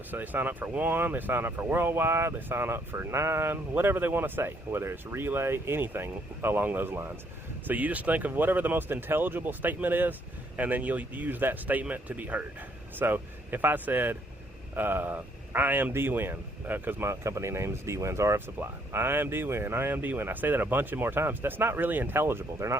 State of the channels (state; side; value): normal; both; correlation 0.68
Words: So they sign up for 1, they sign up for worldwide, they sign up for 9, whatever they want to say, whether it's relay, anything along those lines. So you just think of whatever the most intelligible statement is, and then you'll use that statement to be heard. So if I said, I am D-Win, because my company name is D-Win's RF Supply. I am D-Win, I am D-Win. I say that a bunch of more times. That's not really intelligible. They're